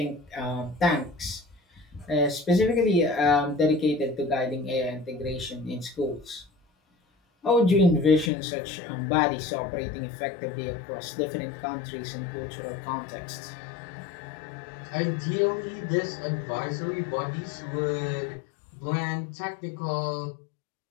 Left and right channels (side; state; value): right; drops out; at 8.3 s